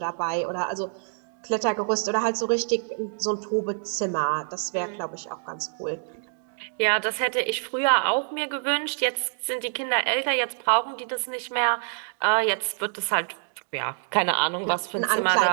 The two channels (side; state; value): left; silent; 61 dB below the other